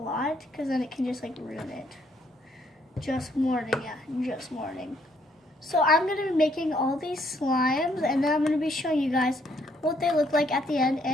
because then it can just like ruin it. Just warning, yeah, just warning. So I'm going to be making all these slimes, and then I'm going to be showing you guys what they look like at the end,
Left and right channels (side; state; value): both; normal; correlation 0.69